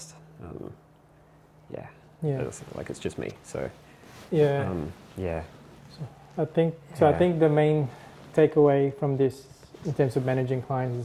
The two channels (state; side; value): identical; both; correlation 1.00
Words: It's like it's just me. So Yeah. I think so. I think the main takeaway from this, in terms of managing